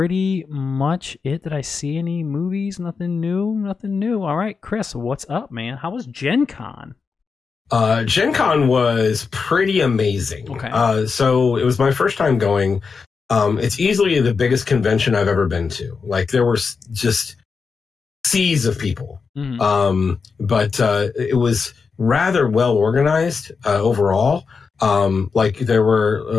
much it. Did I see any movies? Nothing new. All right, Chris, what's up, man? How was Gen Con? Gen Con was pretty amazing. Okay. So it was my first time going. It's easily the biggest convention I've ever been to. Like there were just seas of people. Mm-hmm. But it was rather well organized overall. Like there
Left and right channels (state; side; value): quieter; right; 5.2 dB